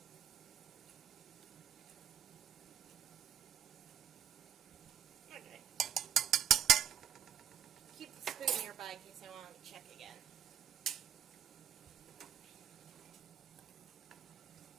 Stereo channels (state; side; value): quieter; left; 9.1 dB